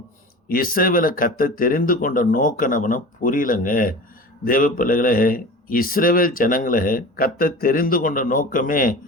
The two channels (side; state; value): both; normal; correlation 0.35